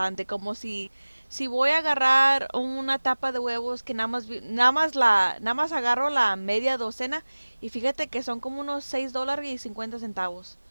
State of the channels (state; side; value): inverted; both; correlation -1.00